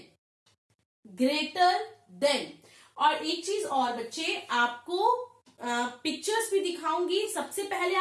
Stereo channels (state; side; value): identical; both; correlation 1.00